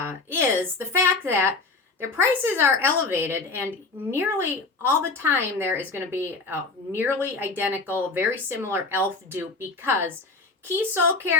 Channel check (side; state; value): right; quieter; 3.8 dB